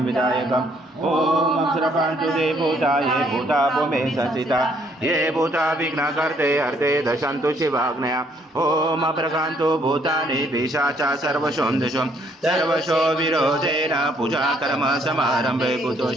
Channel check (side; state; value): both; normal; correlation 0.67